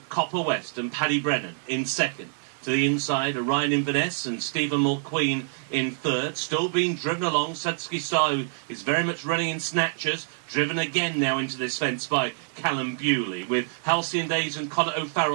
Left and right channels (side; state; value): left; silent; digital silence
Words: Copper West and Paddy Brennan in second. To the inside, Orion Inverness and Stephen Mulqueen in third. Still being driven along, Sudsky Star, who is very much running in snatchers. Driven again now into this fence by Callum Bewley, with Halcyon Days and Conor